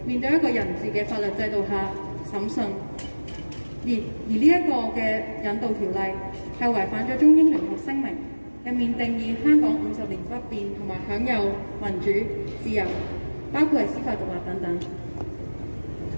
面對一個人治嘅法律制度下審訊。而呢一個嘅引渡條例係違反咗中英聯合聲明入面定義香港50年不變同埋享有民主自由，包括係司法獨立等等。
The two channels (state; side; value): inverted; both; correlation -1.00